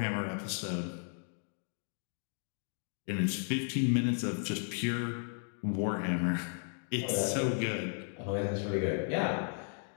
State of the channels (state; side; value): silent; right; 55 dB below the other